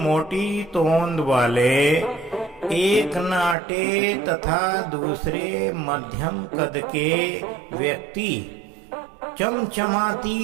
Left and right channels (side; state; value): left; drops out; at 3.6 s